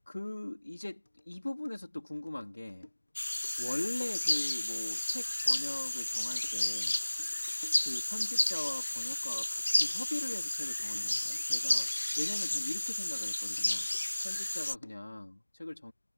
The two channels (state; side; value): inverted; both; correlation -1.00